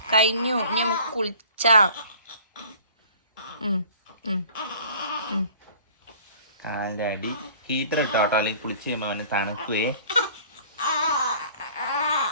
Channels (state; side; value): inverted; both; correlation -0.49